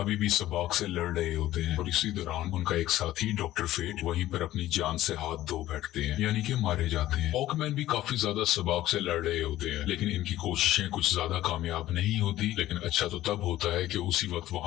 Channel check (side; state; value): right; quieter; 14.7 dB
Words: भी सबाक से लड़ रहे होते हैं और इसी दौरान उनका एक साथी डॉक्टर फेट वहीं पर अपनी जान से हाथ धो बैठते हैं, यानी कि मारे जाते हैं। हॉकमैन भी काफी ज्यादा सबाक से लड़ रहे होते हैं, लेकिन इनकी कोशिशें कुछ ज्यादा कामयाब नहीं होती। लेकिन अच्छा तो तब होता है कि उसी वक्त